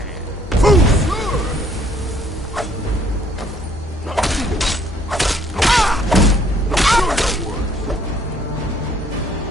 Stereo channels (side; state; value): both; normal; correlation 0.62